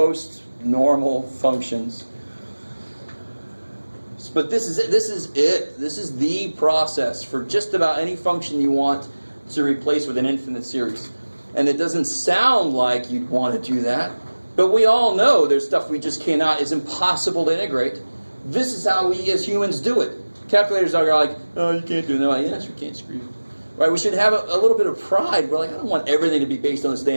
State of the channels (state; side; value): inverted; both; correlation -1.00